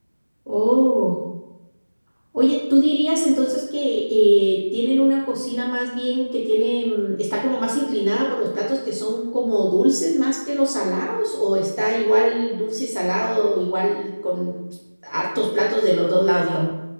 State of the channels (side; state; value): both; inverted; correlation -1.00